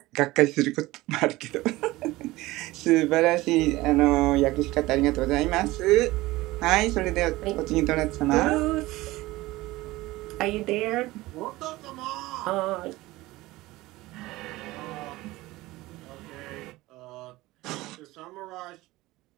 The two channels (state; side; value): quieter; left; 19.0 dB